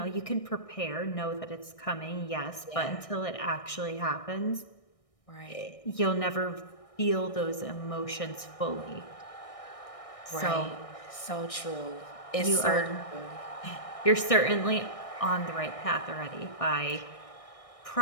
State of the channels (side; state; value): right; late; 1.6 ms